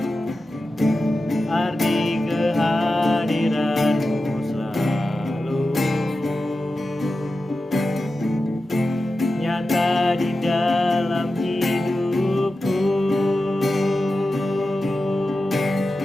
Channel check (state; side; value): normal; both; correlation 0.92